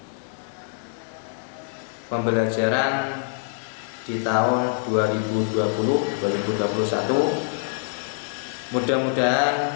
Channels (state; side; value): silent; right; digital silence